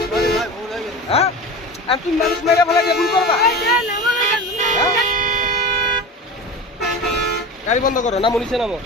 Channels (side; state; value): both; normal; correlation 0.31